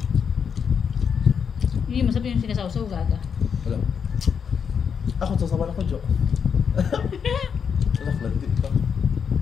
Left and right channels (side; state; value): right; quieter; 6.9 dB